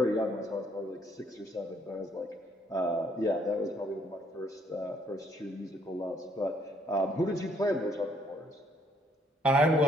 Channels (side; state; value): both; normal; correlation 0.68